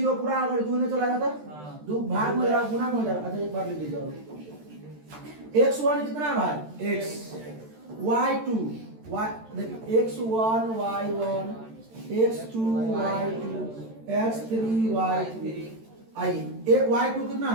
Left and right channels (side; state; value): left; late; 13 ms